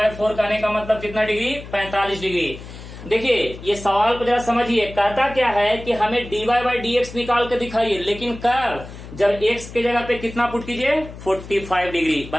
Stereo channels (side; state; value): left; noise; hum, 14 dB below the sound